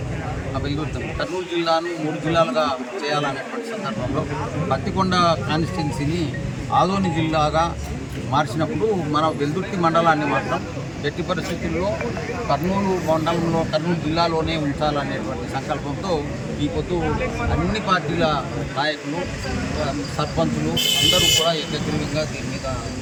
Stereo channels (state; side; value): identical; both; correlation 1.00